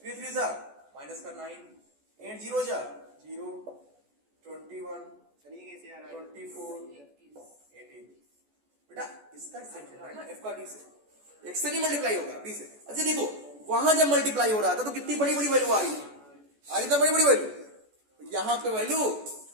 3 3 जा माइनस का 9 8 0 जा 0 21 24 18। बेटा इसका सेट है ना एफ का डी से, एक्स से नहीं मल्टीप्लाई होगा डी से। अच्छा देखो वहां जब मल्टीप्लाई हो रहा था तो कितनी बड़ी बड़ी वैल्यू आ रही थी? आ रही था बड़ी बड़ी वैल्यू। यहां पे वैल्यू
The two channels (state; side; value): late; left; 14 ms